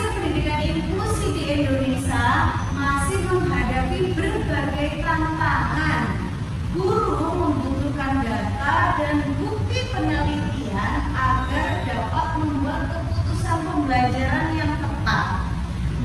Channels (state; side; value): identical; both; correlation 1.00